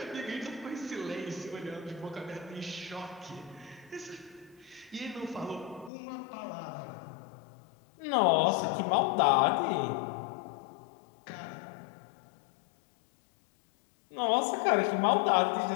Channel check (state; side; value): drops out; right; at 5.9 s